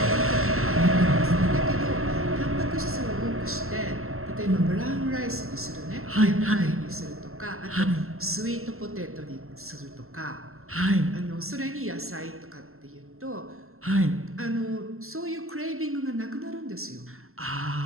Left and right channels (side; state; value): left; late; 0.62 ms